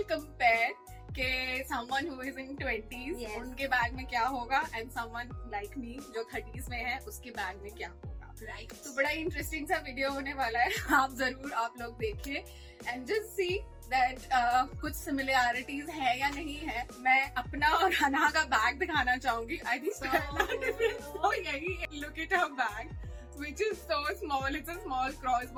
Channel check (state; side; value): identical; both; correlation 1.00